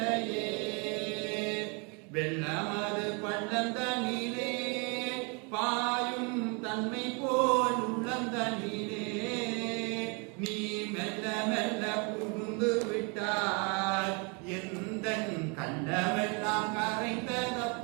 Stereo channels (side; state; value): left; quieter; 33.4 dB